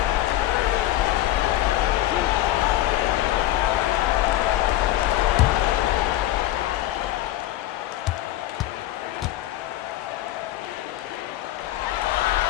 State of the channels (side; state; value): right; quieter; 14.4 dB